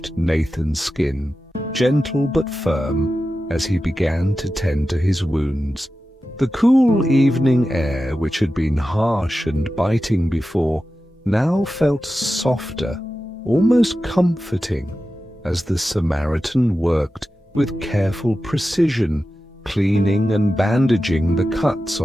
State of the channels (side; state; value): both; normal; correlation 0.93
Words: Nathan's skin, gentle but firm, as he began to tend to his wounds. The cool evening air, which had been harsh and biting before, now felt softer, almost comforting, as the Samaritan worked with careful precision, cleaning and bandaging the cuts